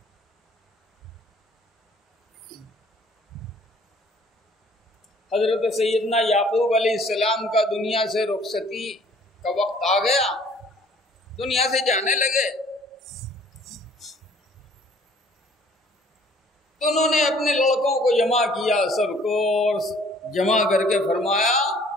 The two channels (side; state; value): both; normal; correlation 0.56